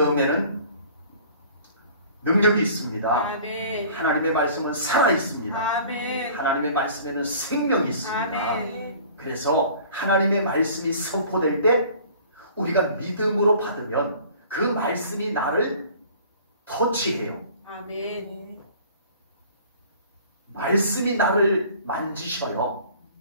능력이 있습니다. 아멘. 하나님의 말씀은 살아 있습니다. 아멘. 하나님의 말씀에는 생명이 있습니다. 아멘. 그래서 하나님의 말씀이 선포될 때 우리가 믿음으로 받으면 그 말씀이 나를 터치해요. 아멘. 말씀이 나를 만지셔요.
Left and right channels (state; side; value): inverted; both; correlation -0.49